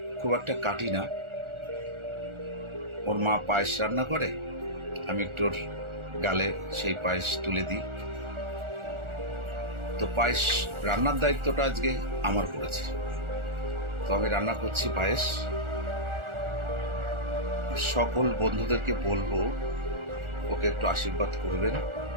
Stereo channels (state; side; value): late; left; 1.4 ms